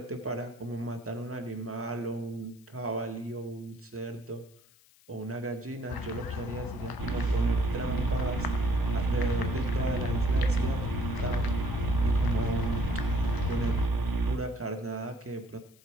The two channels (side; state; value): left; noise; hiss, 28 dB below the sound